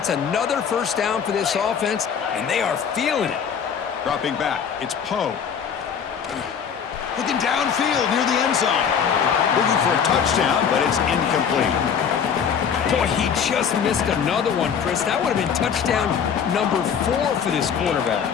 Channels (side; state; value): right; quieter; 7.3 dB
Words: another first down for this offense, and they are feeling it. Dropping back, it's Poe. Looking downfield near the end zone. Looking for a touchdown, but it's incomplete. Boy, he just missed another one, Chris. That would have been touchdown number 4 for this quarterback.